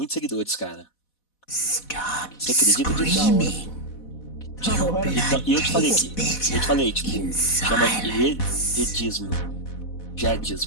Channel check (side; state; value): right; late; 4.1 ms